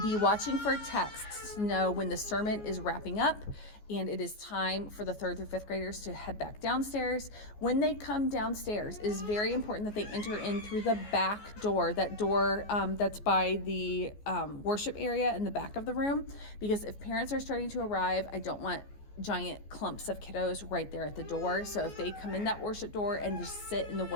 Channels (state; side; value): late; right; 14 ms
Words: be watching for texts to know when the sermon is wrapping up and it is time for the 3rd through 5th graders to head back downstairs. When they come downstairs, it is very important that they enter in through the back door, that door that's by the worship area in the back of the room, because if parents are starting to arrive, I don't want giant clumps of kiddos right there at the door. So if they come in that worship door and just sit in the